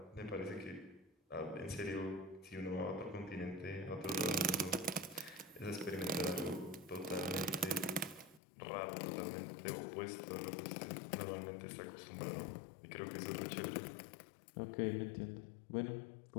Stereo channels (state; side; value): drops out; right; at 8.4 s